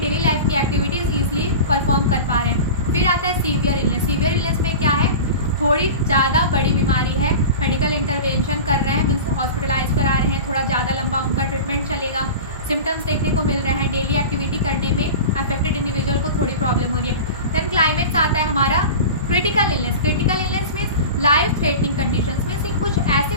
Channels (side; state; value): both; inverted; correlation -0.31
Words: लाइफ की एक्टिविटीज़ ईजिली परफॉर्म कर पा रहे हैं। फिर आता है सीवियर इलनेस। सीवियर इलनेस में क्या है, थोड़ी ज़्यादा बड़ी बीमारी है, मेडिकल इंटरवेंशन कर रहे हैं, मीन्स हॉस्पिटलाइज करा रहे हैं, थोड़ा ज़्यादा लंबा उनका ट्रीटमेंट चलेगा, सिम्टम्स देखने को मिल रहे हैं, डेली एक्टिविटी करने में अफेक्टेड इंडिविजुअल को थोड़ी प्रॉब्लम हो रही है। देन क्लाइमेक्स आता है हमारा critical illness. Critical illness means life threatening conditions में से कुछ ऐसी